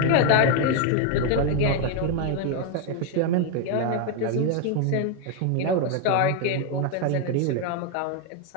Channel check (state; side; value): different; both; correlation 0.01